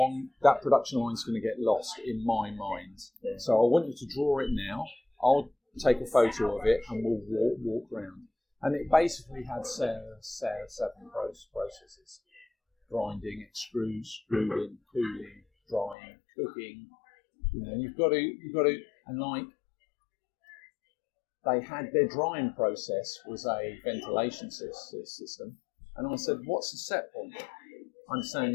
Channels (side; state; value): right; drops out; at 16.0 s